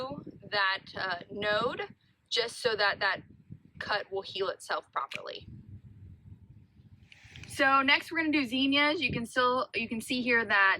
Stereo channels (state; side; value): identical; both; correlation 1.00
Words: that node, just so that that cut will heal itself properly. So next we're going to do zinnias. You can see here